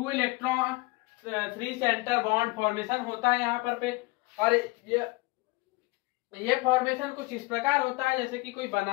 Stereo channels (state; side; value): quieter; right; 23.2 dB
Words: इलेक्ट्रॉन 3 सेंटर बॉन्ड फॉर्मेशन होता है यहाँ पर पे। और ये फॉर्मेशन कुछ इस प्रकार होता है जैसे कि कोई